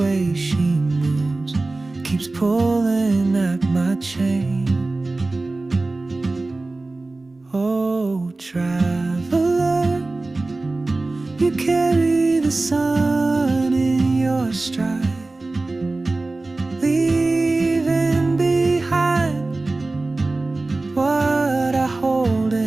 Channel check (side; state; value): left; quieter; 3.2 dB